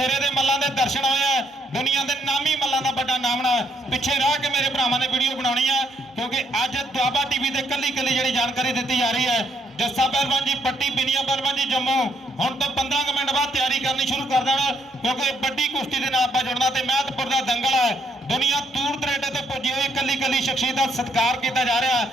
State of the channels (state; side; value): normal; both; correlation 0.73